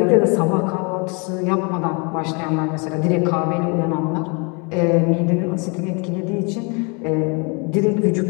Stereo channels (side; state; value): right; quieter; 32.6 dB